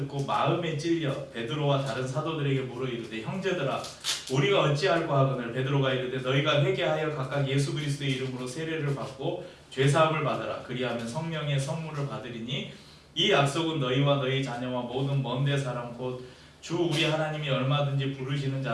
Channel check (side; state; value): both; identical; correlation 1.00